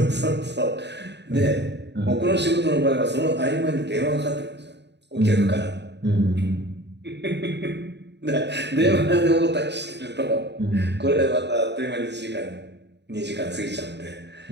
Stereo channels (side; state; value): left; late; 0.50 ms